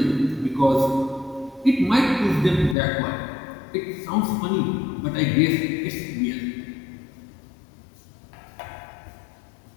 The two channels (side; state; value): right; drops out; at 2.8 s